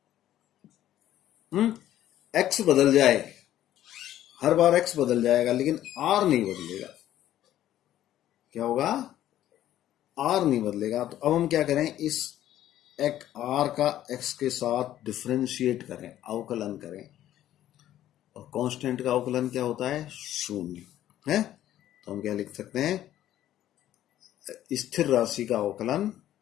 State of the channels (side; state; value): right; quieter; 12.6 dB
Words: X बदल जाए, हर बार एक्स बदल जाएगा, लेकिन आर नहीं बदलेगा। क्या होगा? आर नहीं बदलेगा। तो अब हम क्या करें? इस एक आर का एक्स के साथ डिफरेंशिएट करें, अवकलन करें। और कांस्टेंट का अवकलन क्या होता है? शून्य है। तो हम क्या लिख सकते हैं? स्थिर राशि का अवकलन,